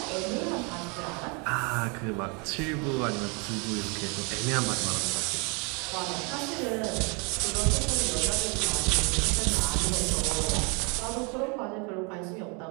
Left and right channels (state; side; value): quieter; left; 32.7 dB